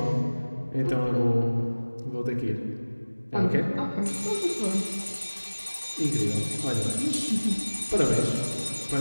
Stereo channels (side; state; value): both; inverted; correlation -1.00